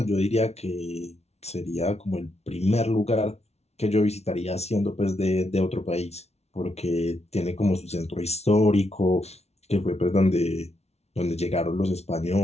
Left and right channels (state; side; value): late; right; 0.31 ms